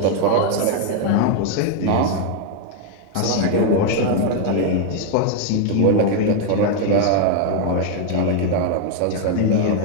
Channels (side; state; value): both; different; correlation 0.01